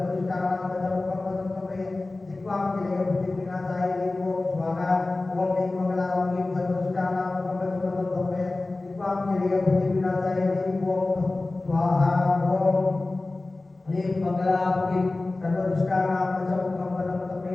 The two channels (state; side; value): quieter; right; 3.1 dB